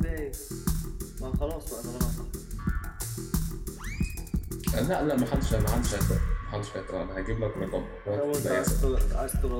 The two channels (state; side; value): identical; both; correlation 1.00